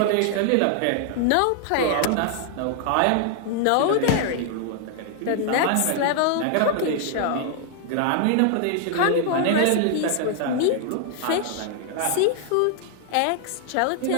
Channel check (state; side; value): different; both; correlation 0.00